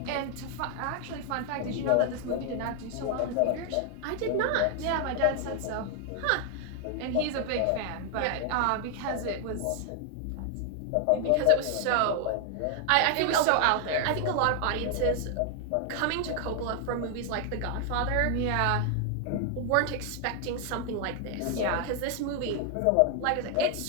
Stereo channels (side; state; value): both; different; correlation 0.00